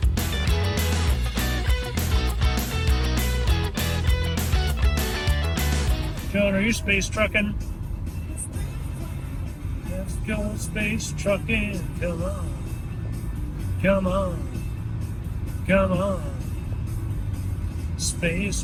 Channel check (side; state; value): both; identical; correlation 1.00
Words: Joan, are you space trucking? Let's go space trucking. Come on. Come on. Come on. Space